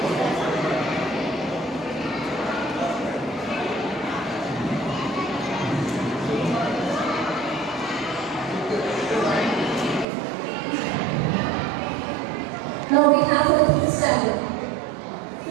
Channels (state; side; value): drops out; left; at 10.1 s